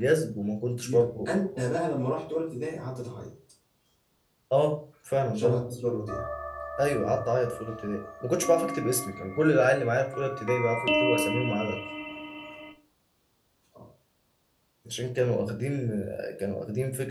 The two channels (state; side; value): identical; both; correlation 1.00